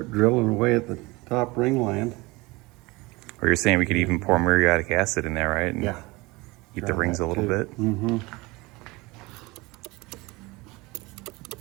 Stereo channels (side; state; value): left; quieter; 23.2 dB